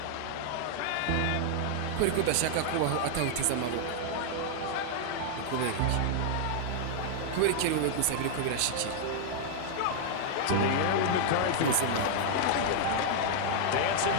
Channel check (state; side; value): different; both; correlation -0.01